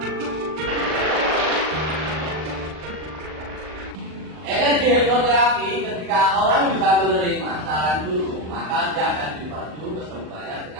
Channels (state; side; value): late; left; 39 ms